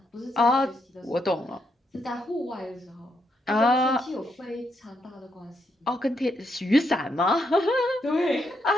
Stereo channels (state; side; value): normal; both; correlation 0.78